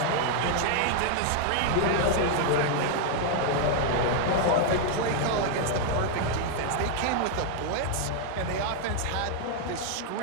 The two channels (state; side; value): different; both; correlation 0.00